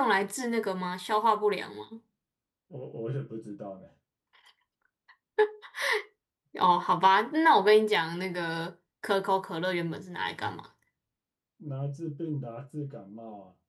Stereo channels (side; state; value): both; identical; correlation 1.00